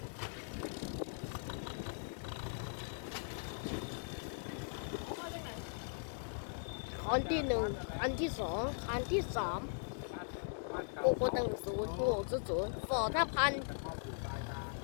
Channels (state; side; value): silent; right; digital silence